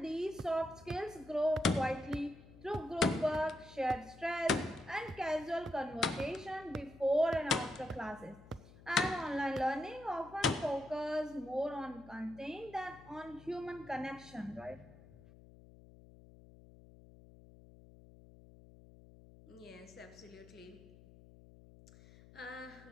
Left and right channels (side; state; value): left; noise; hum, 21 dB below the sound